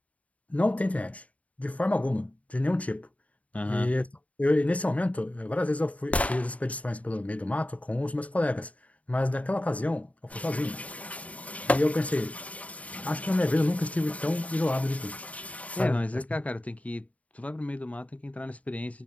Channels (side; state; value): right; late; 0.068 ms